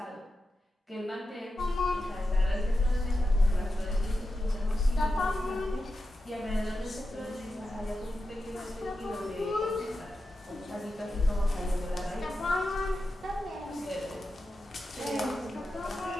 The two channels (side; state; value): both; normal; correlation 0.90